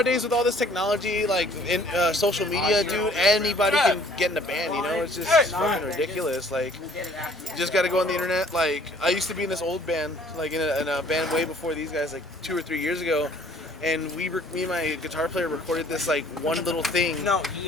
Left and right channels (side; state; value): both; normal; correlation 0.57